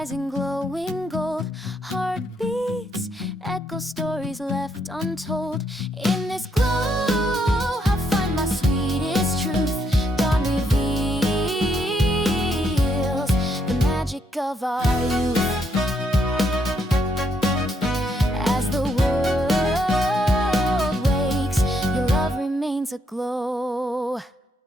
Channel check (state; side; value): normal; both; correlation 0.75